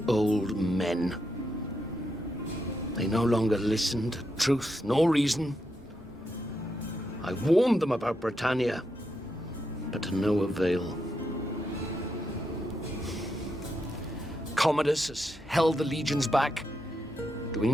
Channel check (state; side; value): normal; both; correlation 0.83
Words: old men. They no longer listen to truth nor reason. I warned them about Britannia, but to no avail. Commodus has held the legions back,